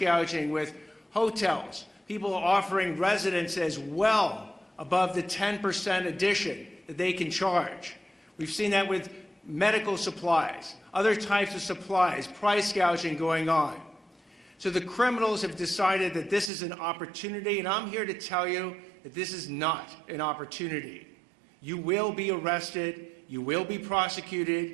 with hotels, people offering residences well above the 10% addition that they can charge. We've seen that with medical supplies, other types of supplies, price gouging going on. So the criminals have decided that this is an opportunity, and I'm here to tell you that this is not an opportunity. You will be arrested, you will be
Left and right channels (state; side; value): drops out; left; at 16.5 s